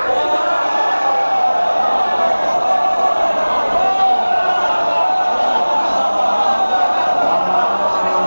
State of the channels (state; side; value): inverted; both; correlation -1.00